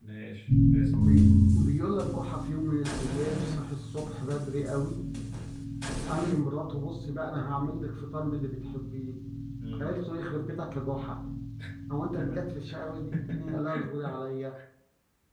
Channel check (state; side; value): identical; both; correlation 1.00